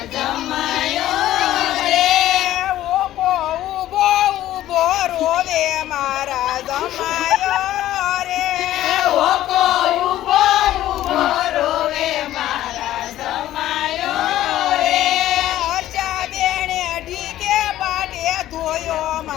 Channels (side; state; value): right; quieter; 13.7 dB